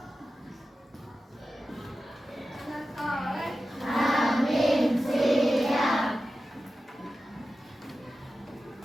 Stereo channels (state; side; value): normal; both; correlation 0.93